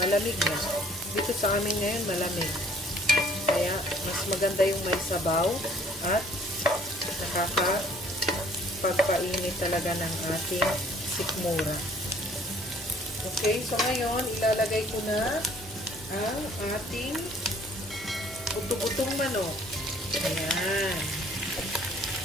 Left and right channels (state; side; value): normal; both; correlation 0.57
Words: na. Dito sa amin ngayon, malamig. Kaya, mas maganda yung may sabaw at nakakapagpainit talaga ng ating sikmura. Okay, so ngayon, ilalagay ko na ang ating buto-butong manok. Ayan.